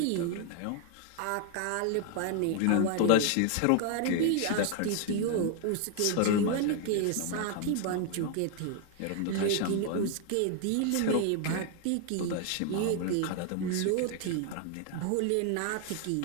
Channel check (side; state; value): both; different; correlation 0.01